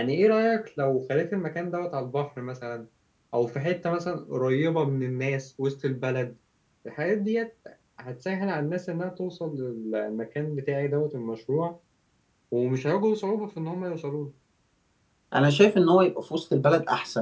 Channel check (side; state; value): both; identical; correlation 1.00